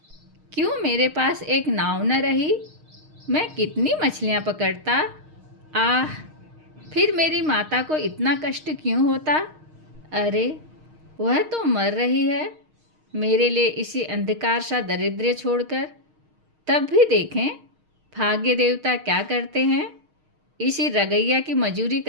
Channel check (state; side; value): late; left; 6.5 ms